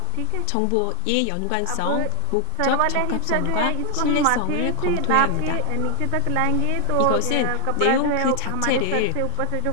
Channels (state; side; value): different; both; correlation 0.01